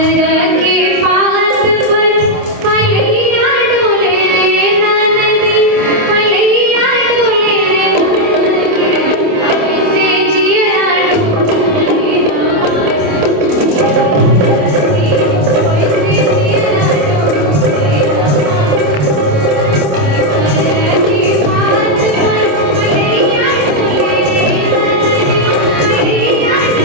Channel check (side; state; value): left; late; 27 ms